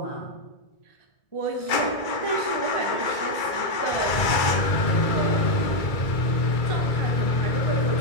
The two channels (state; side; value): late; right; 2.3 ms